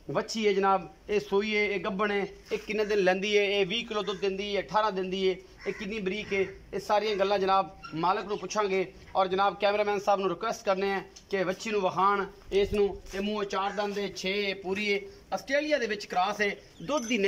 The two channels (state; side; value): identical; both; correlation 1.00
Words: बच्ची है जनाब, ये सूई है, ये गब्बन है, ये किन्ने दिन लैंदी है, ये 20 किलो दुध दिंदी है, 18 दिंदी है, ये कितनी बरीक है, ये सारियां गल्लां जनाब मालक नूं पुछांगे। और जनाब कैमरामैन साहब नूं रिक्वेस्ट करने हैं कि बच्ची नूं वखाण इस नूं, ये मूँह 4 दंद है, 6 पूरी है, आस्ट्रेलिया दे विच क्रॉस है, दुध दी